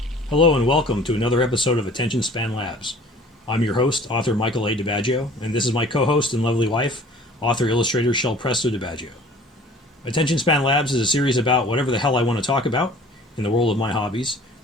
Hello and welcome to another episode of Attention Span Labs. I'm your host, author Michael A. DiBaggio, and this is my co-host and lovely wife, author-illustrator Shel Presto DiBaggio. Attention Span Labs is a series about whatever the hell I want to talk about in the world of my hobbies.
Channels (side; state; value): both; normal; correlation 0.49